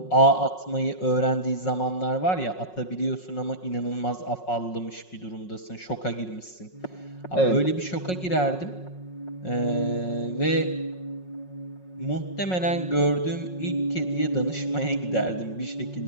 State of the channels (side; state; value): right; late; 5.5 ms